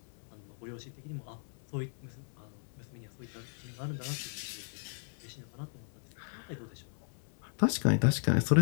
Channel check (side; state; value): right; silent; 54 dB below the other